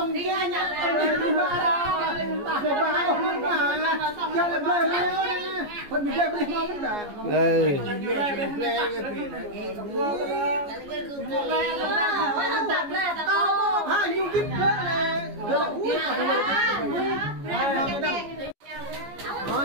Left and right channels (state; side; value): late; left; 14 ms